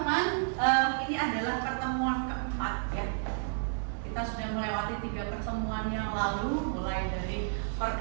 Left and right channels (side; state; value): left; silent; digital silence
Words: ini adalah pertemuan keempat ya. Kita sudah melewati 3 pertemuan yang lalu, mulai dari